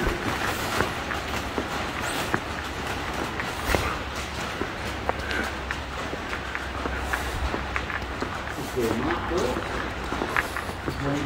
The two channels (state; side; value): identical; both; correlation 1.00